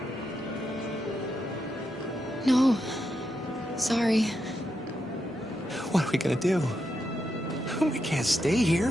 No. Sorry. What are we gonna do? We can't stay here.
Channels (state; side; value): normal; both; correlation 0.84